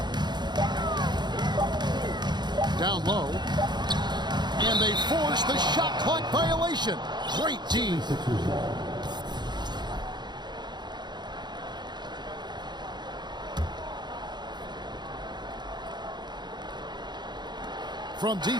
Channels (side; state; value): left; late; 0.21 ms